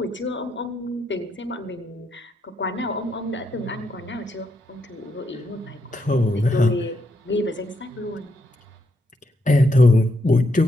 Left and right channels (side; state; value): both; normal; correlation 0.79